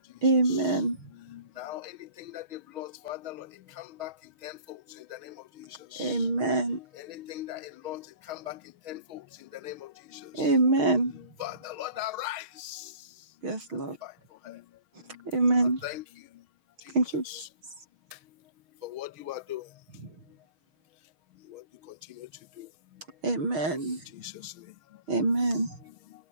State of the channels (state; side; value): late; left; 6.4 ms